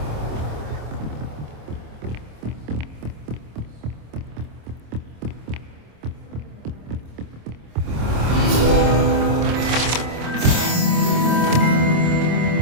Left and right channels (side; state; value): left; late; 26 ms